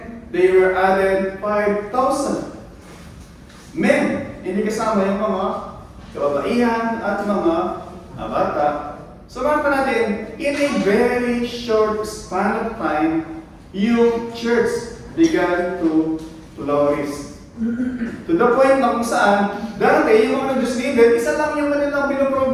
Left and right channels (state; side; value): identical; both; correlation 1.00